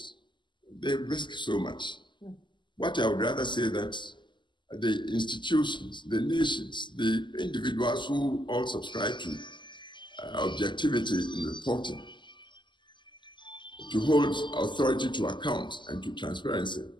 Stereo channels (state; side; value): late; right; 0.22 ms